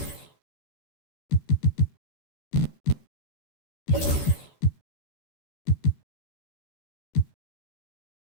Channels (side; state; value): right; late; 13 ms